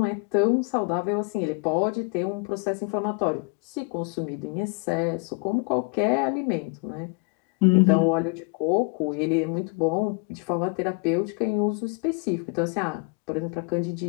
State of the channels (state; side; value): quieter; right; 32.7 dB